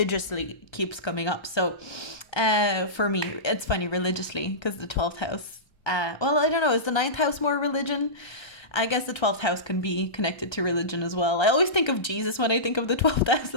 keeps coming up. So for me, it's funny, religiously, because the 12th house, well, I don't know, is the 9th house more religion? I guess the 12th house can be connected to religion as well. I always think of Jesus when I think of the 12th house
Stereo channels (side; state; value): right; late; 1.3 ms